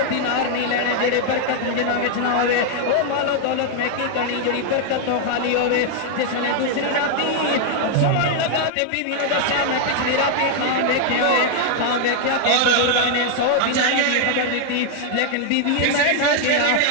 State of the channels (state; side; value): different; both; correlation 0.00